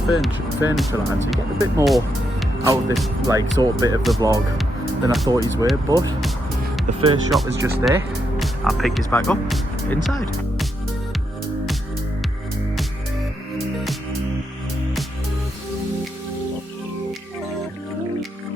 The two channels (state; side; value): normal; both; correlation 0.81